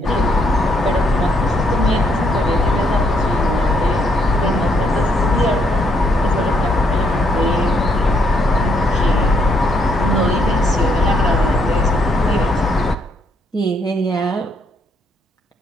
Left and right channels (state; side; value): normal; both; correlation 0.72